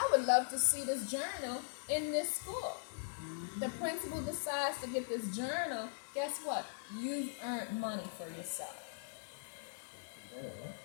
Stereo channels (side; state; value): right; silent; 51 dB below the other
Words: would love to see this journal in this school. The principal decides to get this journal, guess what? You've earned money for yourself.